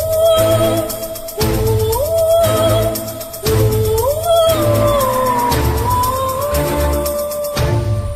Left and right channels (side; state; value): both; identical; correlation 1.00